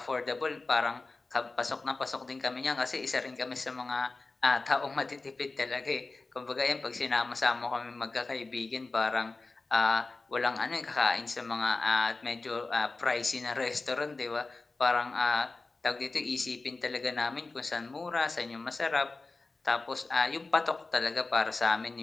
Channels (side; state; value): right; quieter; 3.6 dB